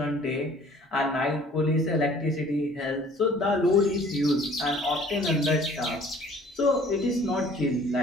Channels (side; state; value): both; normal; correlation 0.53